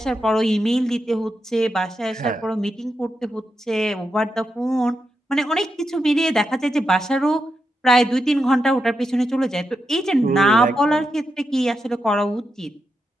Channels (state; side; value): normal; both; correlation 0.86